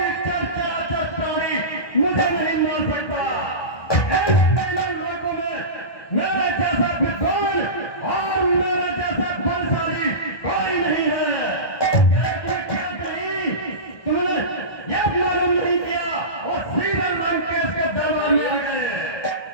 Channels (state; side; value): late; right; 1.6 ms